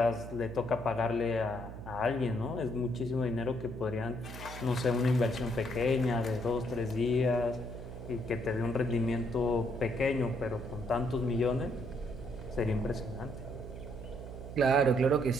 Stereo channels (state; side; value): noise; right; hum, 11 dB below the sound